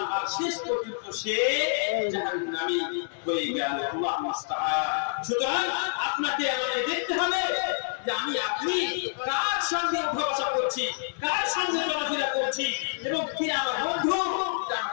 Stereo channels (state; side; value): silent; right; 60 dB below the other